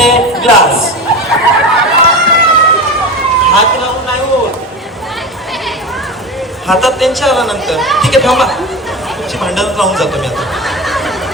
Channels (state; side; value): normal; both; correlation 0.26